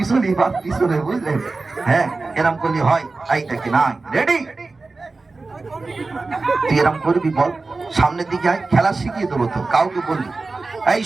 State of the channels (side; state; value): left; quieter; 3.7 dB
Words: বা পিছনে বুঝলেন হ্যাঁ এরম করলে হয় এই দেখি না রেডি তুই এরম করবি বল সামনের দিকে আয় খেলা শিখিয়ে দেবো তো কাউকে বলবি এই